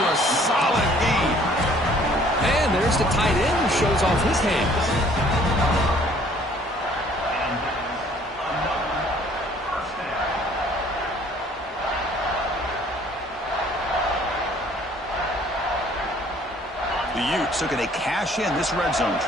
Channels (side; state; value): both; normal; correlation 0.58